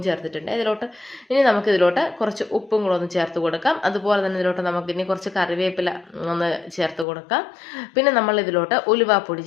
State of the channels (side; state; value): right; drops out; at 7.1 s